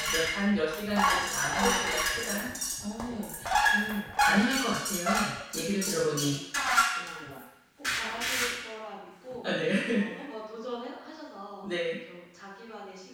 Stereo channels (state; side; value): identical; both; correlation 1.00